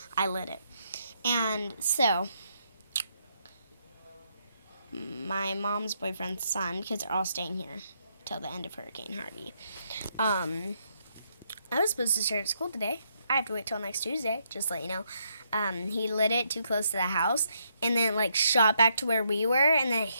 I lit it. And so, my mom's boyfriend's son, because they're all staying here till the end of Hurricane Harvey. I was supposed to start school today. I have to wait till next Tuesday, just to let you know. He lit it too close to the house, and then like shot back to where we were, and then it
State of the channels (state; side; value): inverted; both; correlation -0.76